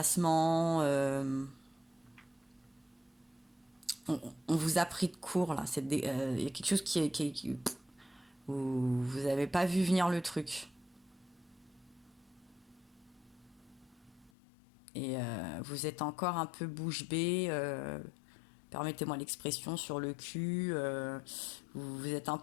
On vous a pris de court là. Il y a quelque chose vous n'avez pas vu venir le truc. Et vous êtes encore un peu bouche bée. Permettez-moi l'expression, sur le cul, vous êtes un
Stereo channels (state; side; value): drops out; right; at 14.3 s